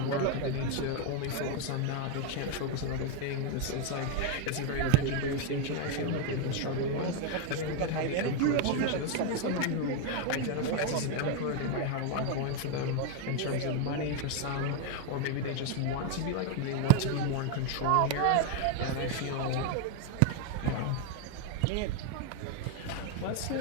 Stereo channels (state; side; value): different; both; correlation 0.01